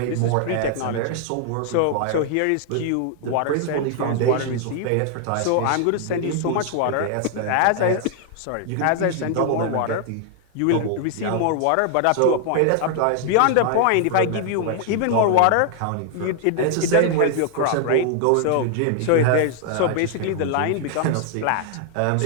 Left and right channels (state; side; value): different; both; correlation 0.00